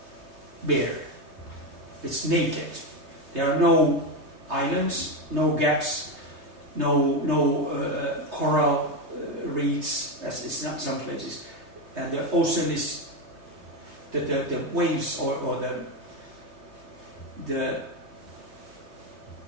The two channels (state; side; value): late; left; 3.3 ms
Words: bare. It's naked. There are no islands, no gaps, no coral reefs, as it's not some places. And the ocean is the waves or the